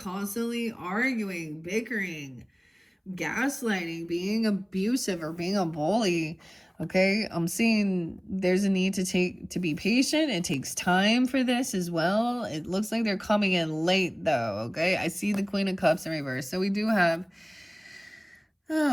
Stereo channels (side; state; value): both; identical; correlation 1.00